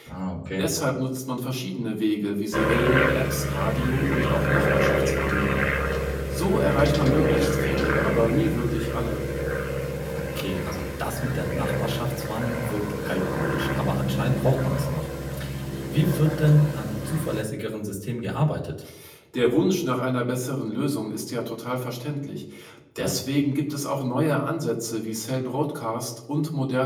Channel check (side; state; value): both; identical; correlation 1.00